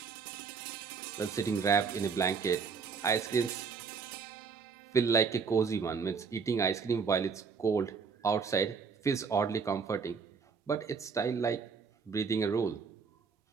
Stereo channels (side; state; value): left; quieter; 5.6 dB